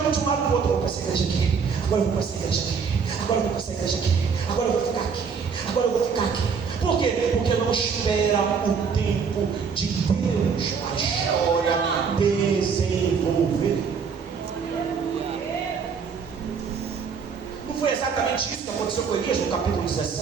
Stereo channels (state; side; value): quieter; left; 6.0 dB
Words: de um lado para o outro. Eu vou para essa igreja aqui, agora eu vou para essa igreja aqui, agora eu vou para essa igreja aqui, agora eu vou ficar aqui, agora eu vou ficar aqui. Por quê? Porque não espera o tempo de Deus para a história desenvolver. Não foi exatamente isso que aconteceu com Elias no capítulo